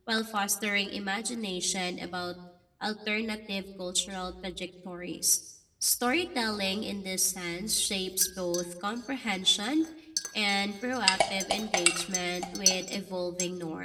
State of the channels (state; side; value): identical; both; correlation 1.00